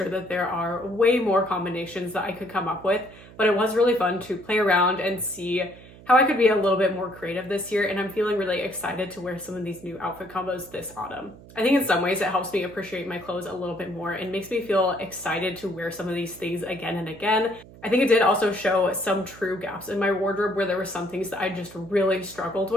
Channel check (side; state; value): right; noise; hum, 20 dB below the sound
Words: that there are way more combinations that I could come up with, but it was really fun to play around and see how I could be a little bit more creative this year, and I'm feeling really excited to wear some of these new outfit combos this autumn. I think in some ways it helps me appreciate my clothes a little bit more and makes me feel excited to wear some of these things again and again. I think it did also show some true gaps in my wardrobe where there were some things that I just really struggled